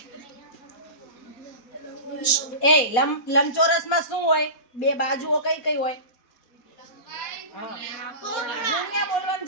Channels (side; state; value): right; late; 4.2 ms